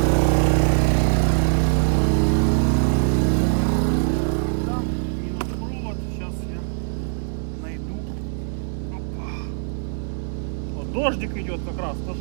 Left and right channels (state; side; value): silent; left; digital silence